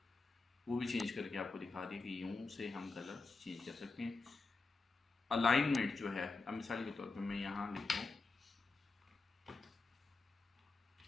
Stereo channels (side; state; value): right; quieter; 3.9 dB